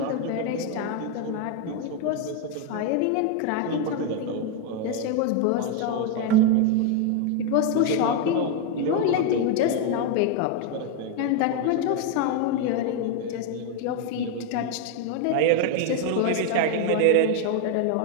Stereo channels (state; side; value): different; both; correlation 0.01